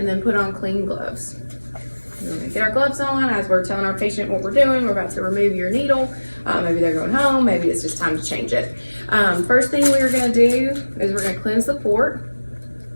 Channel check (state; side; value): inverted; both; correlation -1.00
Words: then put on clean gloves. We're going to get our gloves on as we're telling our patient what we're doing. We're about to remove your needle. Maybe they're going home. Maybe it's just time to change it. First thing we're going to do is we're going to cleanse the port.